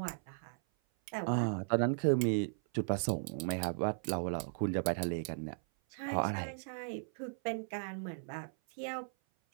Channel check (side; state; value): left; silent; 53 dB below the other